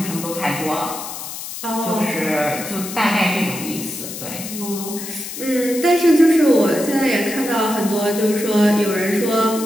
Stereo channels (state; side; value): noise; left; hiss, 9 dB below the sound